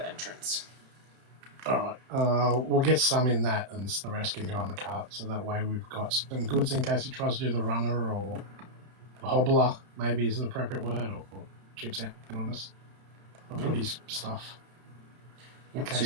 entrance. Alright, we'll get some in that, and the rest can go on the cart. So that way we've got some goods in case he tries to do the runner or the hobbler, maybe is the appropriate word, or cheats out on us. I'll put his stuff. In Yep, case so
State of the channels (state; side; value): late; left; 32 ms